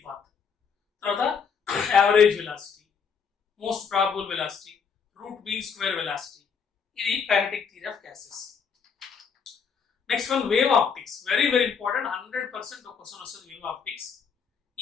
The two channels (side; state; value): right; quieter; 6.2 dB